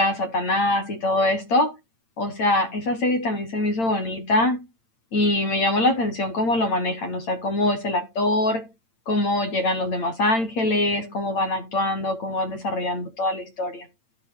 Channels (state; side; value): late; right; 8.8 ms